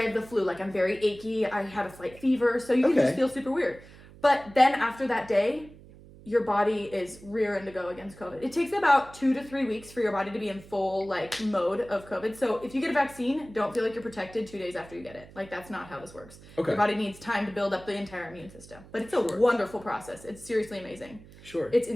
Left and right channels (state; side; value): noise; right; hum, 20 dB below the sound